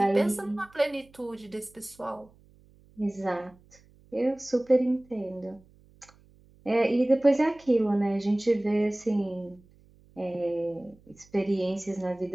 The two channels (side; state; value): right; noise; hum, 28 dB below the sound